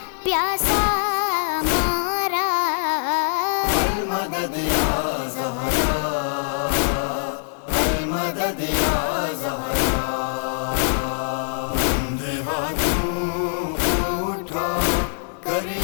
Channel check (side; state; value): right; silent; digital silence